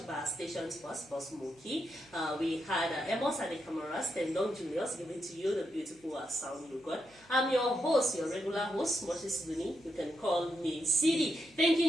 by our station's boss Mookie. We had Amos and the cameras, then Don Julius giving to you the beautiful sound you got. I'm your host, your regular host, Moses Duni. You can call me Siddy.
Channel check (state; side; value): noise; right; hum, 29 dB below the sound